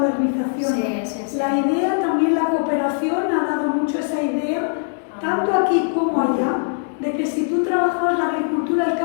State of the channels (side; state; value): right; silent; digital silence